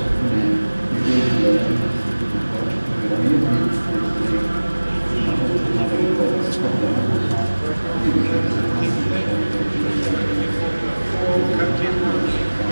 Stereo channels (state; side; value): inverted; both; correlation -1.00